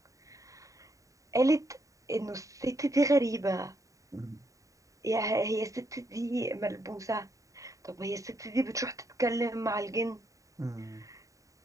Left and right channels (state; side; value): late; left; 0.16 ms